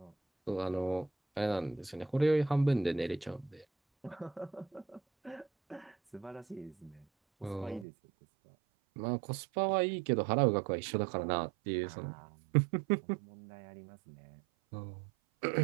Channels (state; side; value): drops out; left; at 7.9 s